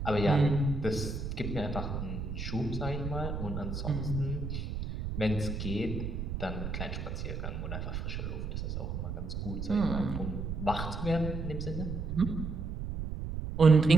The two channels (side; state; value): right; noise; rumble, 4 dB below the sound